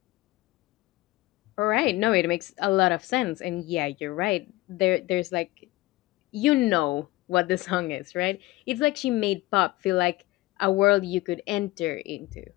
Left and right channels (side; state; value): right; quieter; 19.3 dB